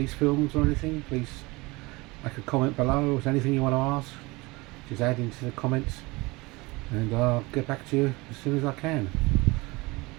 films or anything, please make a comment below. Or if there's anything you want to ask, just add into the comments and I'll get back to you as soon as I can.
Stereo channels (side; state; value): left; quieter; 23.6 dB